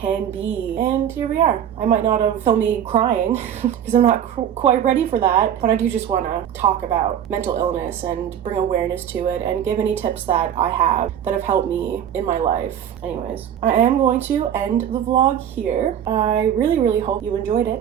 be. And here we are. I might not have filmed me crying because I'm not quite ready for that, but I do just want to talk about mental illness and bring awareness to it and give any tips that I have that have helped me in my life. Anyways, I am going to end the vlog here. I really hope you enjoyed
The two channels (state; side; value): quieter; left; 9.6 dB